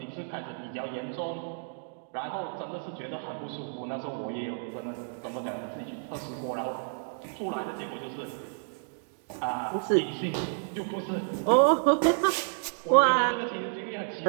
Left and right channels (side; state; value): left; silent; digital silence